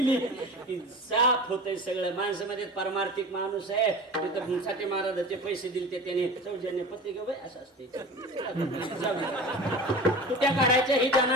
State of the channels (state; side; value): normal; both; correlation 0.34